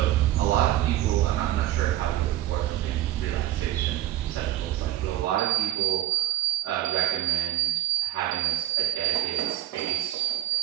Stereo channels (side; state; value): left; quieter; 13.9 dB